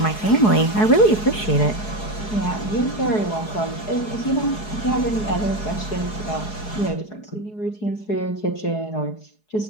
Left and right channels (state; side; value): late; right; 4.7 ms